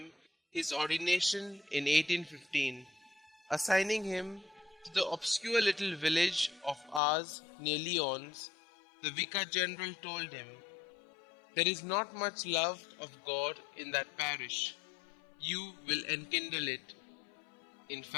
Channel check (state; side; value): drops out; right; at 7.0 s